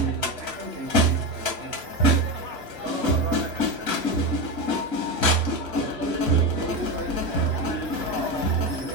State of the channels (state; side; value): late; left; 3.0 ms